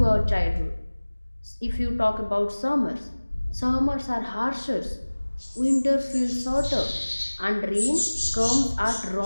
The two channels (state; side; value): inverted; both; correlation -1.00